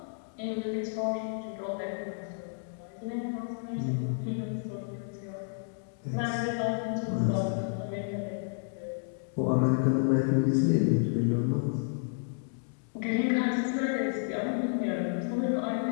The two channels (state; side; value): silent; right; digital silence